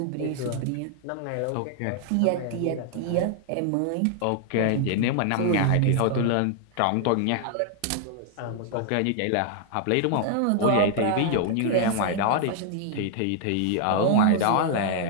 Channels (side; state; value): both; different; correlation 0.00